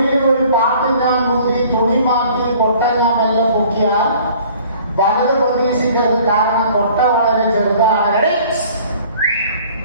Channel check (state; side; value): inverted; both; correlation -0.52